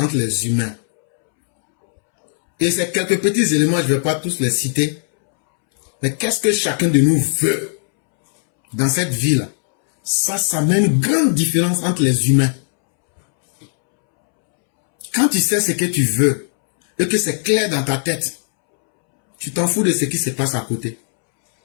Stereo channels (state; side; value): silent; right; 68 dB below the other